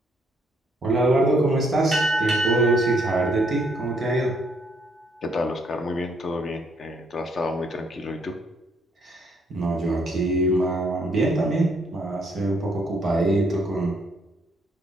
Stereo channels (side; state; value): both; normal; correlation 0.70